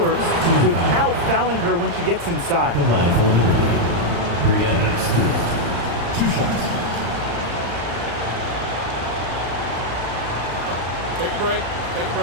without fouling her when she gets inside. The line for Liberty. Brianna Stewart. 2 shots. Take a break. Take a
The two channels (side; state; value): left; late; 35 ms